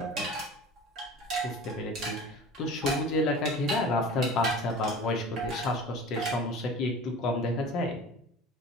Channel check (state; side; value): normal; both; correlation 0.39